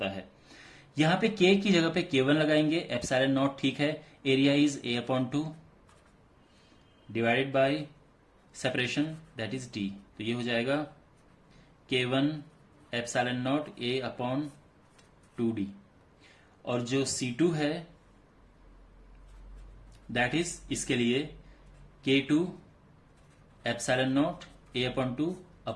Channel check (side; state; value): both; identical; correlation 1.00